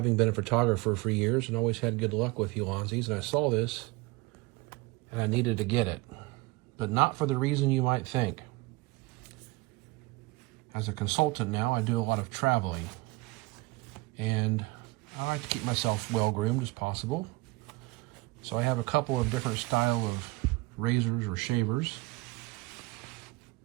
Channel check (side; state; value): left; quieter; 22.6 dB